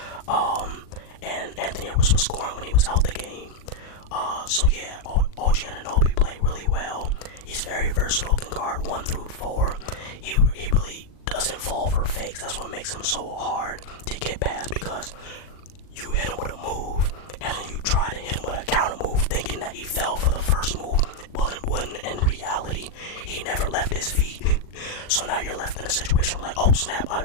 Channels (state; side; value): late; right; 39 ms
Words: And Anthony Edwards was scoring when he was out the game. So yeah, OG Anunoby played really well. He's very versatile, can guard 1 through 4. He really doesn't fall for fakes. That's what makes him so hard to get past, because you hit him with a move, and then you try to hit him with a counter move, thinking that he fell for the first move. Well, in reality, he never left his feet. So now you're left in a situation where, like, oh snap,